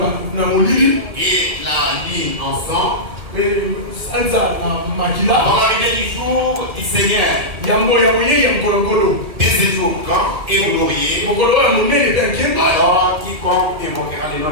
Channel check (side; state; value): left; late; 1.5 ms